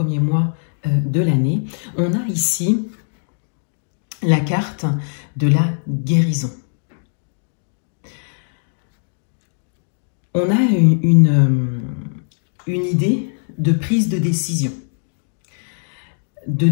mois de l'année. On a ici la carte de la guérison. On a une idée de prise de décision, de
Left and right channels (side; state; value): right; silent; digital silence